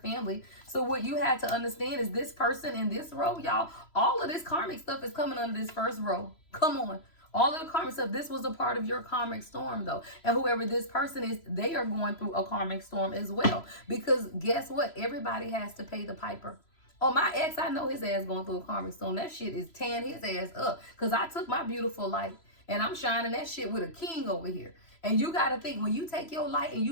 So what you have to understand is this person in this row, y'all, all of this karmic stuff is coming under this first row. Come on. All of the karmic stuff, this was a part of your karmic storm, though. And whoever this person is, they are going through a karmic storm as well. Because guess what? Everybody has to pay the piper. Oh, my ex, I know his ass going through a karmic storm. That shit is tearing his ass up. Because I took my beautiful light and I'm shining that shit with a king over here. And you got to think, when you take your light and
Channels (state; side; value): late; right; 3.0 ms